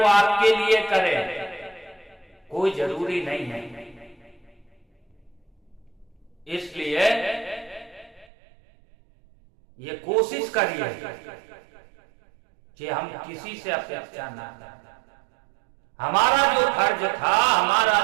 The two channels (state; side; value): drops out; left; at 8.2 s